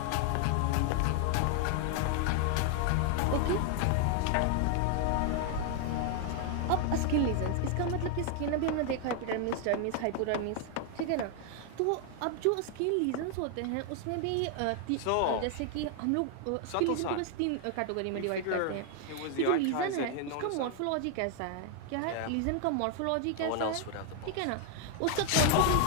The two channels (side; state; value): both; different; correlation 0.00